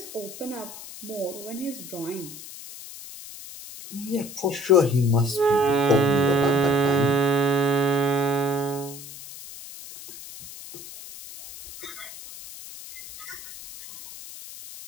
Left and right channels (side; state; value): left; noise; hiss, 14 dB below the sound